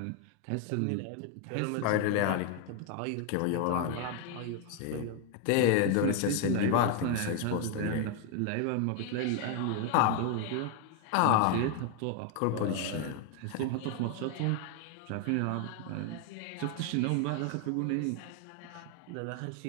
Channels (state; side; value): different; both; correlation 0.01